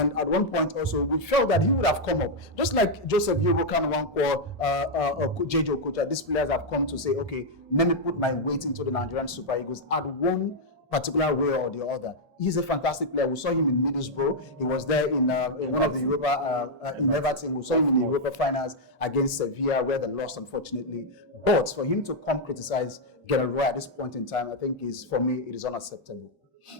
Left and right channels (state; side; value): normal; both; correlation -0.03